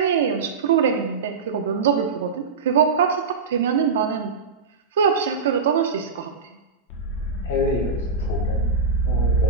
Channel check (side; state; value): left; quieter; 4.8 dB